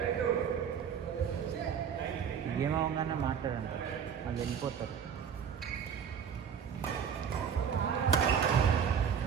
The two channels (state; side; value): quieter; left; 7.6 dB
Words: ఏమవగానే మాట్లాడండి. అది వెళ్ళిపోతారు.